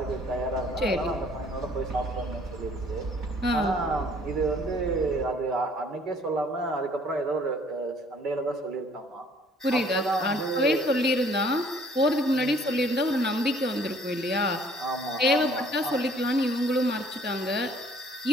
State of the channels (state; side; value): normal; both; correlation 0.58